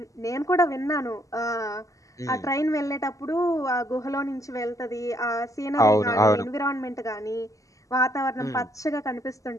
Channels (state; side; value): late; right; 0.16 ms